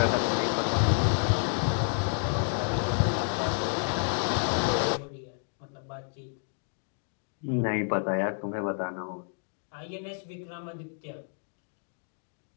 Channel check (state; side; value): silent; right; 58 dB below the other